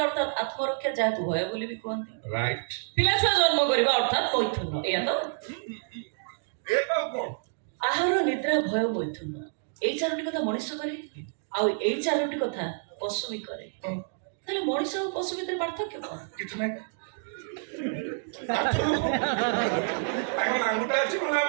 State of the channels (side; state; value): left; silent; digital silence